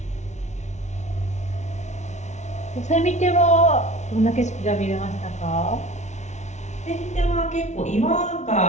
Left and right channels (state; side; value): late; right; 0.33 ms